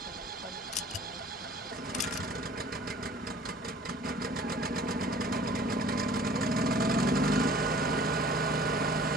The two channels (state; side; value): normal; both; correlation 0.50